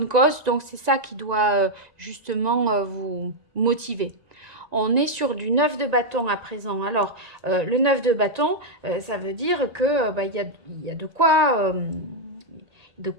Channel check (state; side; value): late; left; 1.9 ms